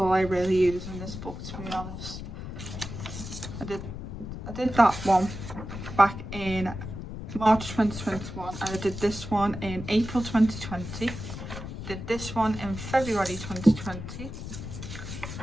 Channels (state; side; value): noise; left; rumble, 9 dB below the sound